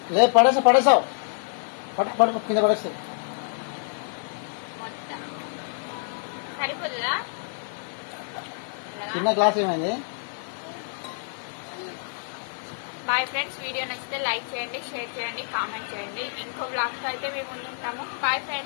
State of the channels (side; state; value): right; silent; digital silence